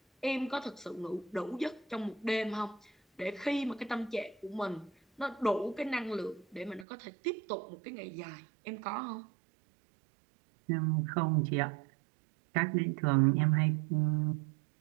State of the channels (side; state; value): left; drops out; at 6.9 s